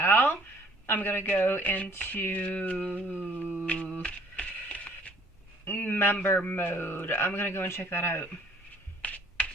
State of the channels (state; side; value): normal; both; correlation 0.58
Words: I'm going to go into member mode. I'm going to go and check that out.